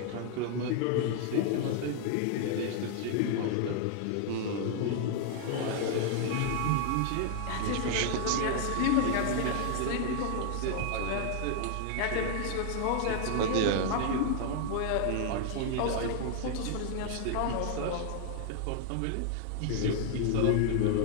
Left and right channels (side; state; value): both; different; correlation 0.00